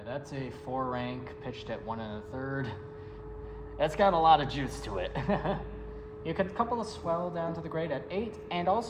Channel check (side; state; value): both; identical; correlation 1.00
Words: That's a 4-rank pitched at 1 1/3. That's got a lot of juice to it. You could couple a swell down to the grate at 8, and